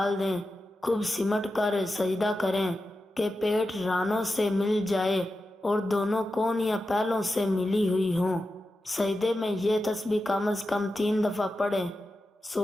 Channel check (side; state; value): both; normal; correlation 0.91